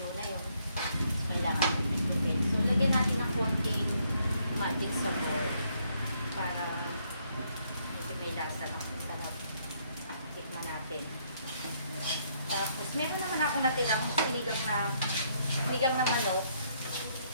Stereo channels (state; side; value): inverted; both; correlation -0.71